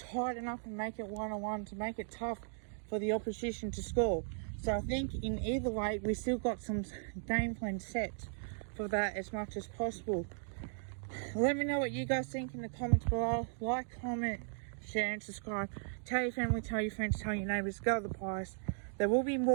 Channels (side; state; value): left; silent; digital silence